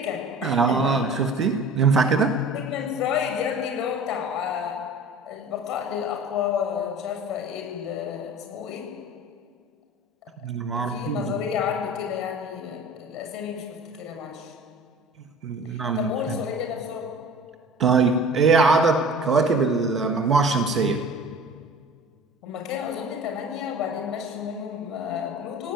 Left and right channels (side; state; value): both; normal; correlation 0.42